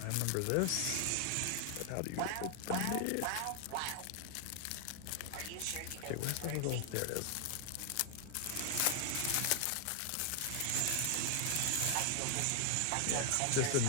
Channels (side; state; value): both; different; correlation 0.00